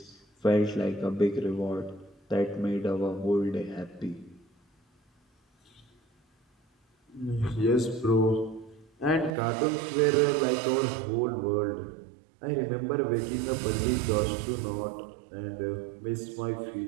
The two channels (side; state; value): left; drops out; at 9.3 s